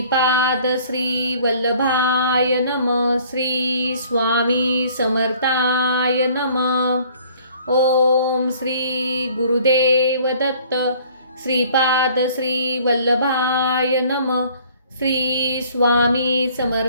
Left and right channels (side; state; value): both; inverted; correlation -0.55